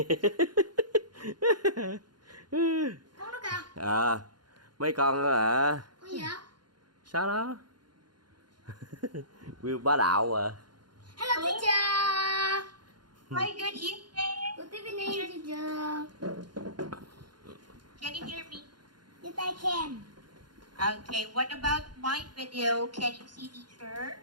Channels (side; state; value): left; late; 0.71 ms